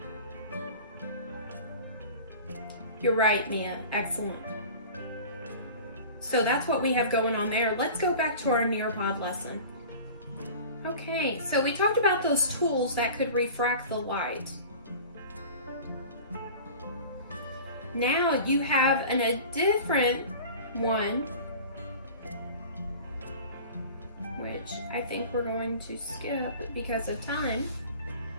You're right, Mia. Excellent. So that's what we have going on there. Let's go back to our Nearpod lesson. Okay, so we talked about those tools that could refract the light. Now you have a different one, which I think we're going to skip because of time.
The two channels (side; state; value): both; inverted; correlation -0.39